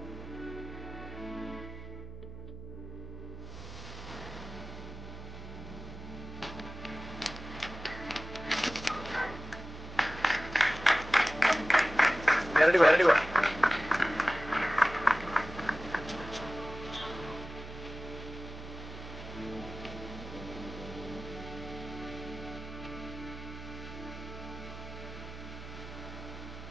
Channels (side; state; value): right; noise; hum, 12 dB below the sound